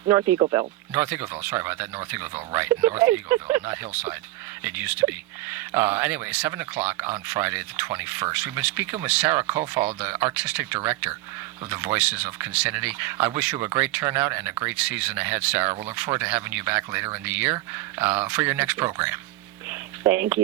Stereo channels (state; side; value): quieter; left; 17.8 dB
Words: North Eagleville. North Eagleville, sorry about that, North Eagleville, right, North Eagleville, not Hillside. It used to be. Anyway, 7 o'clock on Friday the 21st. We've been speaking with Sarah Kofal, the artistic director of the Voices of Concinnati. I wish you a great turnout and a great season ahead, Sarah. We'll look forward to having you back later in the year for your next program. Thank